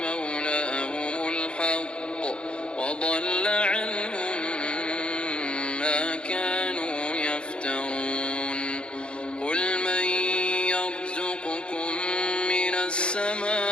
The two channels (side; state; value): right; late; 0.055 ms